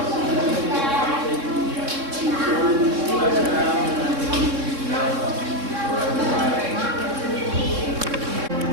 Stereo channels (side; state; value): left; late; 3.6 ms